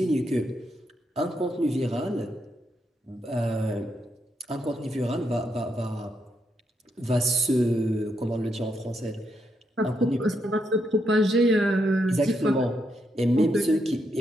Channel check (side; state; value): both; normal; correlation 0.80